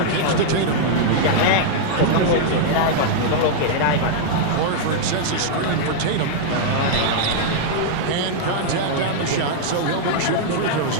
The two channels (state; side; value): different; both; correlation -0.01